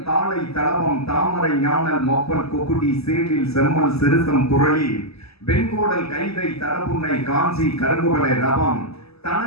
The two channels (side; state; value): right; late; 0.78 ms